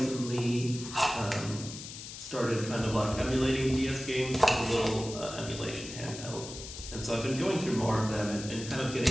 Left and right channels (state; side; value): noise; left; hiss, 11 dB below the sound